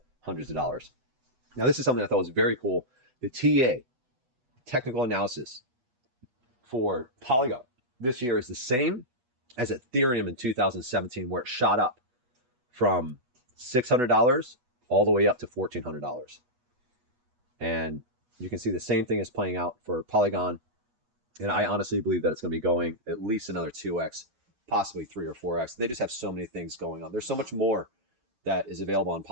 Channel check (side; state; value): left; late; 8.1 ms